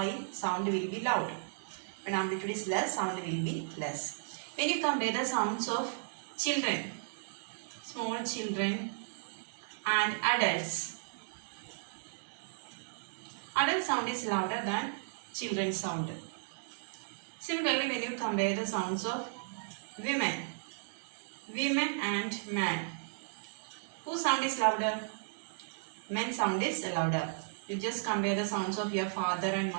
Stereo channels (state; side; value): silent; left; digital silence